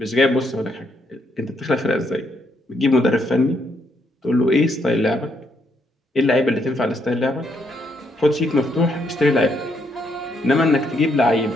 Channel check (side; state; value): both; normal; correlation 0.75